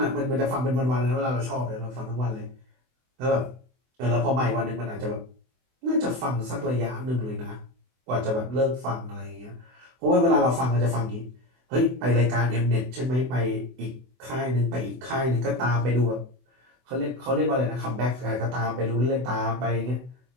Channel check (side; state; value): left; late; 24 ms